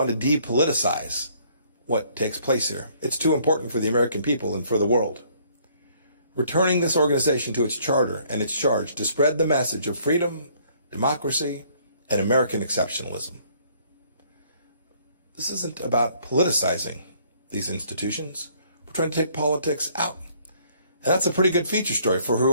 to depoliticize what takes place here. It's too important for the American people and for the world. Returning this organization to its charter and its charge to spread the message of freedom, democracy, and American exceptionalism. This isn't about politicizing these institutions. We're trying to take politics out. And that's a pretty good feature story for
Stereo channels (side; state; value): both; inverted; correlation -0.63